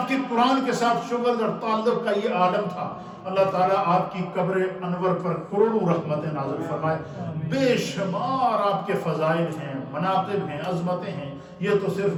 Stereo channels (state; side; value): identical; both; correlation 1.00